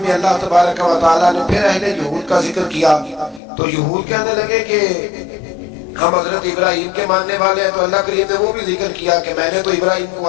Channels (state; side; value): drops out; right; at 3.4 s